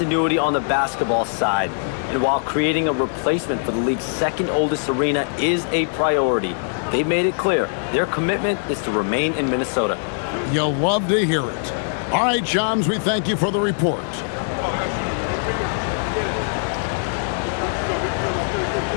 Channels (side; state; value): right; silent; digital silence